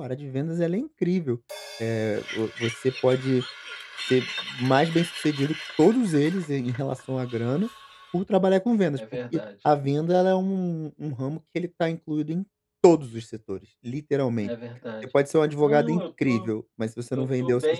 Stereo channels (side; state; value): both; identical; correlation 1.00